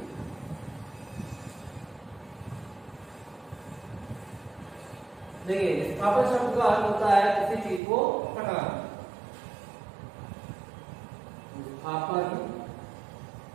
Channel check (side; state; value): left; drops out; at 7.8 s